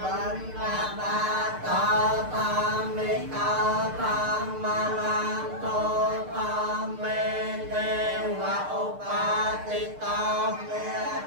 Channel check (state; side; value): late; left; 6.6 ms